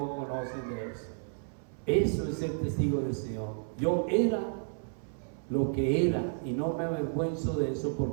conocen de eso. Eso es ser testigo del Señor. Yo era lo que era y no me avergüenzo de eso,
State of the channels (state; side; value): silent; left; 57 dB below the other